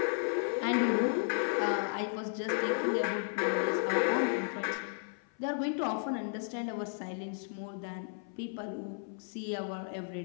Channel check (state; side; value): silent; right; 55 dB below the other